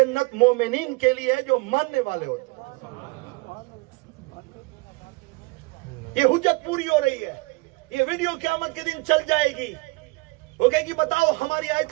مومنین کے لیے ہے جو ماننے والے ہوتے ہیں۔ یہ حجت پوری ہو رہی ہے، یہ ویڈیو قیامت کے دن چل جائے گی، وہ کہے گی بتاؤ ہماری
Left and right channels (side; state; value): left; quieter; 25.1 dB